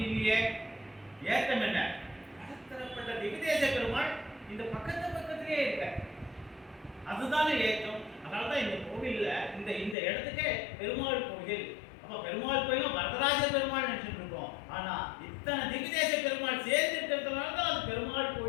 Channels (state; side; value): drops out; right; at 10.0 s